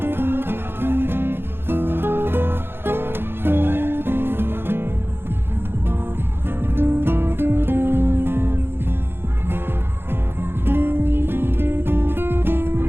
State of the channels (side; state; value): left; late; 0.11 ms